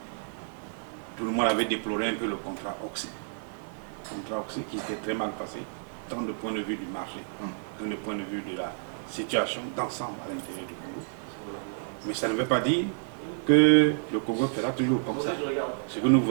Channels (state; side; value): silent; left; 58 dB below the other